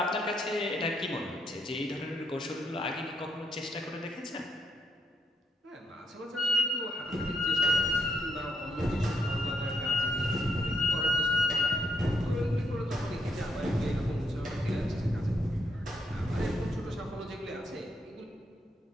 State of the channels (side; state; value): both; normal; correlation 0.77